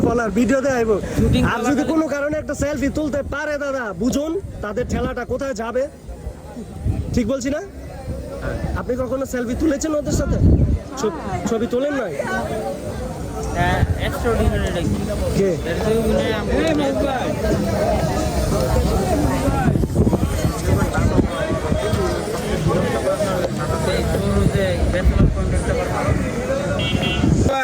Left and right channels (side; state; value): both; identical; correlation 1.00